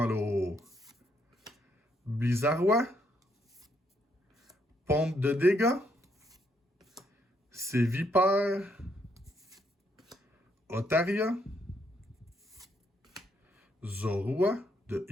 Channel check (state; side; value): normal; both; correlation 0.74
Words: l'eau. Blizzardois. Pompe de dégâts. C'est Vipère. Otaria. Zorua de